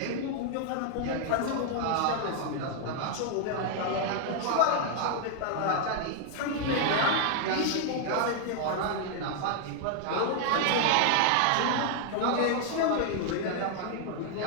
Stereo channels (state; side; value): different; both; correlation 0.00